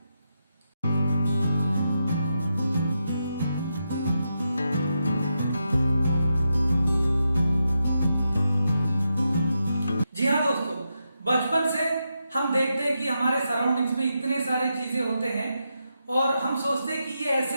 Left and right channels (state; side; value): inverted; both; correlation -0.85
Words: जी हाँ दोस्तों, बचपन से हम देखते हैं कि हमारे सराउंडिंग्स में इतने सारे चीजें होते हैं और हम सोचते हैं कि ये